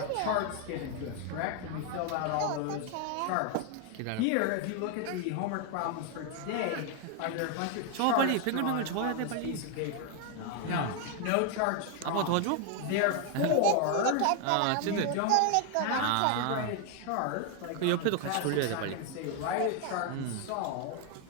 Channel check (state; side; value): different; both; correlation 0.01